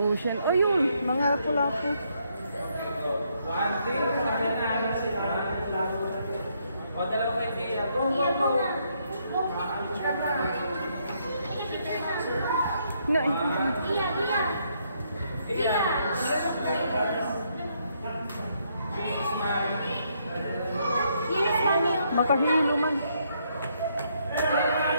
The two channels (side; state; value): both; inverted; correlation -0.74